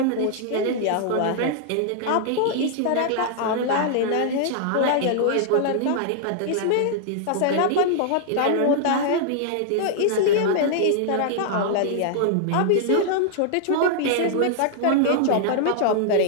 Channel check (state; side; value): different; both; correlation -0.01